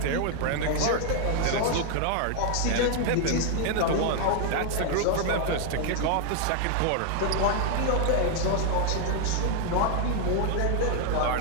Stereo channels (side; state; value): both; different; correlation 0.00